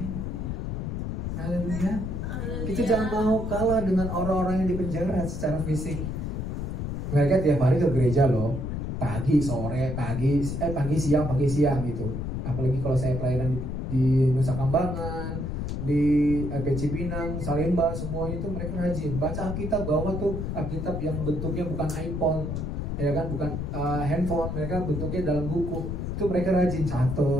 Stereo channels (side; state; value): left; noise; rumble, 3 dB below the sound